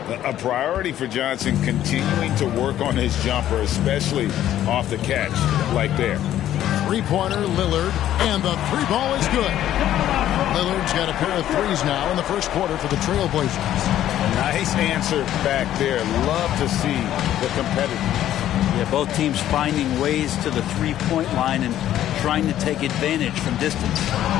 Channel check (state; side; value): quieter; right; 12.1 dB